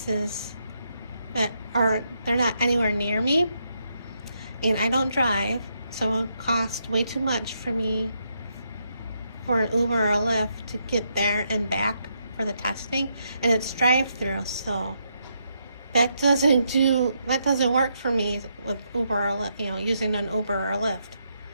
they're not anywhere near me, and I don't drive, so it would cost way too much for me for an Uber or a Lyft to get there and back for the testing, and it's drive-through, so that doesn't work for me with Uber or using an Uber or a Lyft.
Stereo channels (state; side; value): inverted; both; correlation -0.79